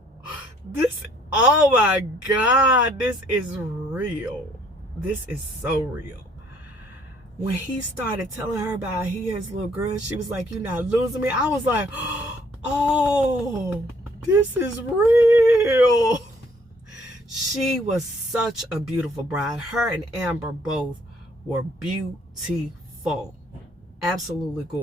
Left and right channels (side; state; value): both; normal; correlation 0.63